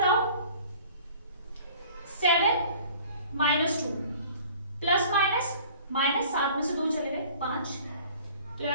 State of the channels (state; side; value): inverted; both; correlation -0.49